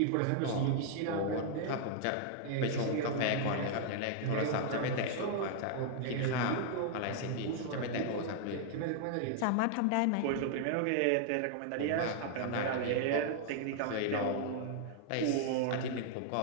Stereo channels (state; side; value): different; both; correlation -0.01